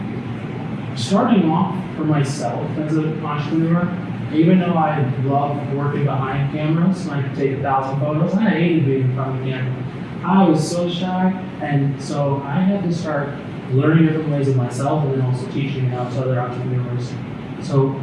Starting off for myself as an entrepreneur, even though I love working behind cameras and I could take 1,000 photos, I hated being in front of the camera. I was so shy, and so I had to start learning different ways of myself and then also teaching it out to other entrepreneurs. So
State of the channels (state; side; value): identical; both; correlation 1.00